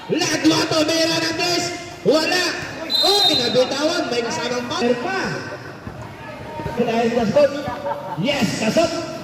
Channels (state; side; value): identical; both; correlation 1.00